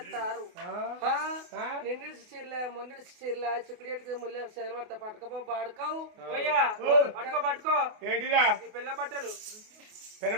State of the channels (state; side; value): late; left; 28 ms